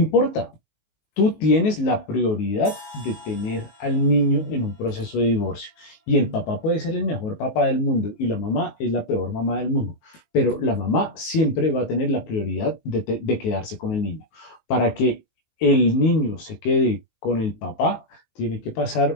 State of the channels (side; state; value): right; late; 19 ms